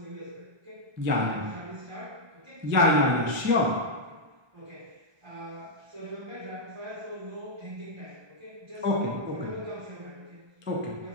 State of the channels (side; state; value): left; late; 1.2 ms